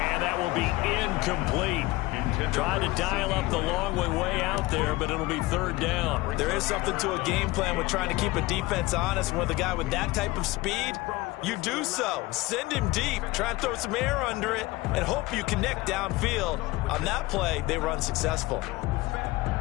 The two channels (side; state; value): right; quieter; 20.3 dB